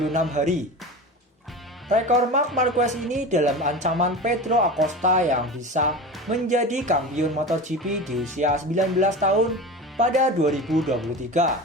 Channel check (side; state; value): both; normal; correlation 0.30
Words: hari. Rekor Marc Marquez ini dalam ancaman Pedro Acosta yang bisa menjadi kampiun MotoGP di usia 19 tahun pada